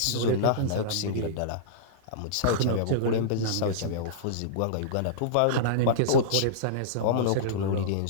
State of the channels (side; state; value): both; different; correlation -0.04